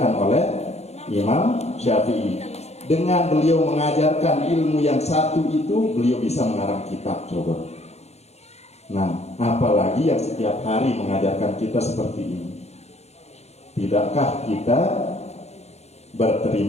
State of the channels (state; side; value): late; right; 0.31 ms